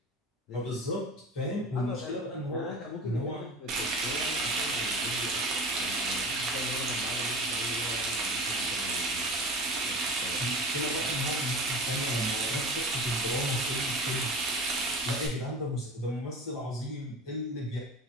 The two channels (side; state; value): both; normal; correlation 0.33